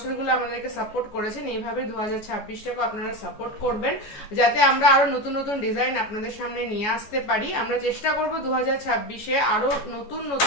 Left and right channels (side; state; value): right; late; 14 ms